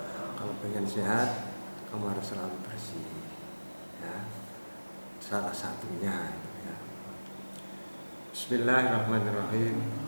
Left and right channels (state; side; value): inverted; both; correlation -1.00